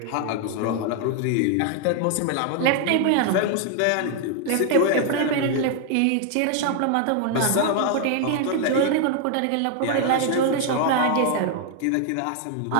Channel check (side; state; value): both; different; correlation 0.00